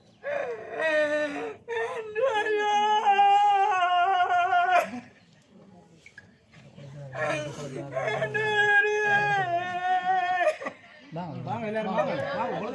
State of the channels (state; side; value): identical; both; correlation 1.00